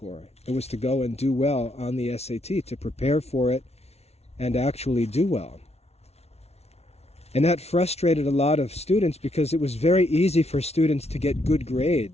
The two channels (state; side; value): late; right; 0.31 ms